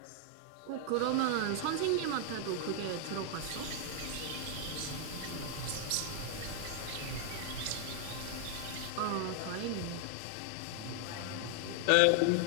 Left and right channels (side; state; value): both; different; correlation 0.00